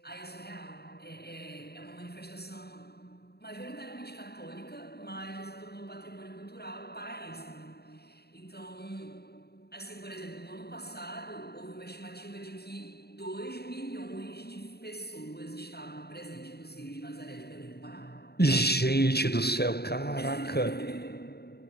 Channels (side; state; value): right; late; 0.47 ms